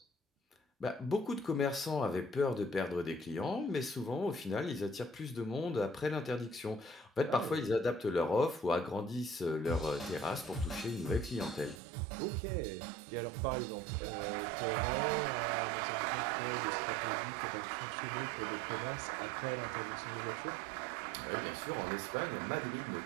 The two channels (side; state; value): left; drops out; at 11.8 s